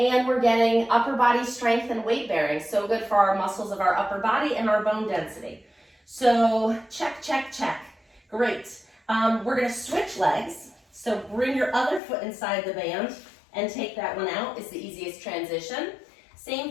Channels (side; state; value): right; drops out; at 12.0 s